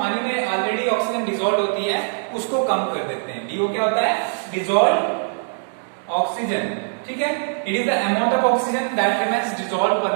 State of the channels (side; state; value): left; silent; digital silence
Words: में ऑलरेडी ऑक्सीजन डिजॉल्व होती है उसको कम कर देते हैं। डीओ क्या होता है, डिजॉल्व ऑक्सीजन, ठीक है, it is the amount of oxygen that remains dissolve